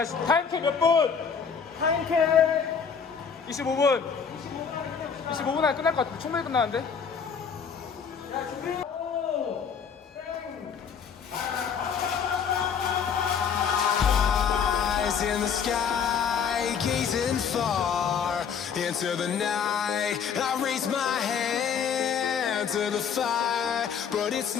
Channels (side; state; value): right; quieter; 6.7 dB